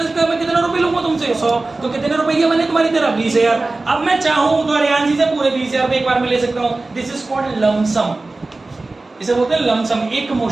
का मैं कितने रुपए लूंगा तुमसे, 100। तो कितने रुपए मैंने तुम्हारी तरफ, 20,000। अब मैं चाहूं तो हरियाणसी से पूरे 20,000 एक बार में ले सकता हूं। दिस इज कॉल्ड लमसम, इसे बोलते हैं लमसम, एक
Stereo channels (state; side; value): quieter; left; 3.2 dB